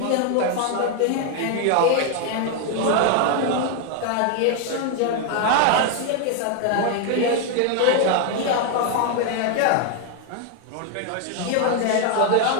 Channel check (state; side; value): different; both; correlation 0.01